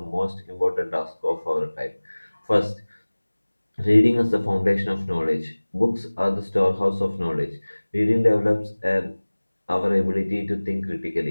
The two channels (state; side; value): inverted; both; correlation -1.00